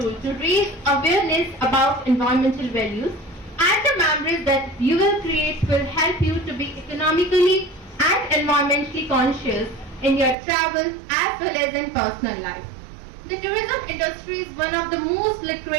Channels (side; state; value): left; drops out; at 10.4 s